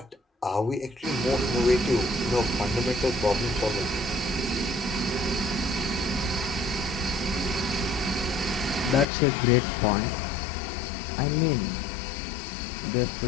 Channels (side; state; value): right; drops out; at 9.1 s